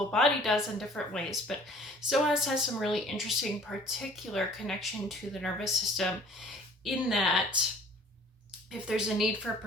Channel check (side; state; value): both; normal; correlation 0.53